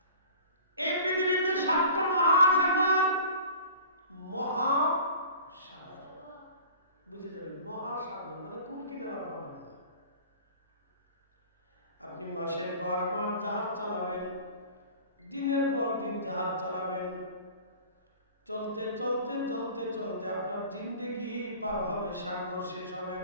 এই পৃথিবীতে 7টা মহাসাগর। মহাসাগর বুঝে যাবেন, মহাসাগর মানে কোন কিনারা পাবেন না। আপনি মাসের পর মাস জাহাজ চালাবেন, দিনের পর দিন জাহাজ চালাবেন, চলতে চলতে চলতে চলতে আপনার জিন্দেগি পার হবে, সাগর শেষ হবে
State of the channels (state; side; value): inverted; both; correlation -0.43